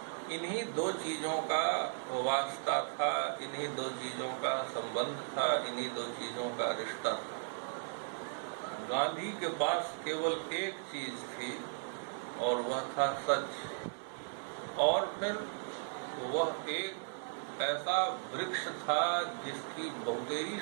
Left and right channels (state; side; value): silent; left; 54 dB below the other